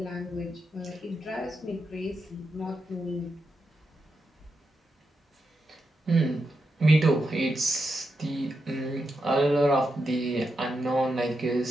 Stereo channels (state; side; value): normal; both; correlation 0.86